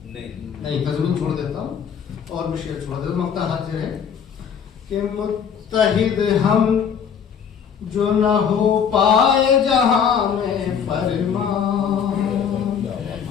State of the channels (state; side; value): quieter; right; 7.5 dB